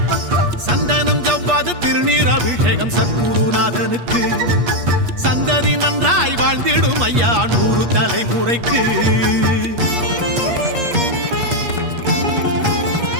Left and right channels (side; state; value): left; late; 8.4 ms